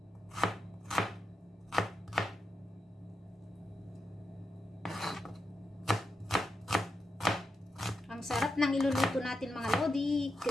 Ang sarap ng iluluto natin mga lodi.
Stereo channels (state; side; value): normal; both; correlation 0.87